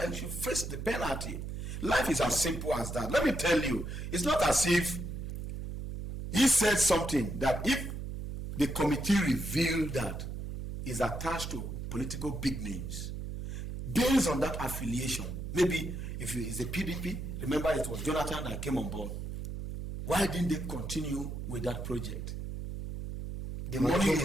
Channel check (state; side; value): noise; right; hum, 6 dB below the sound